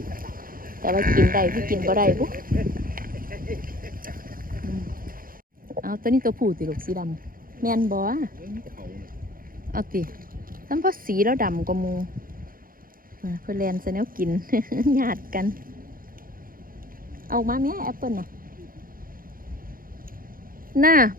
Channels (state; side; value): late; left; 0.41 ms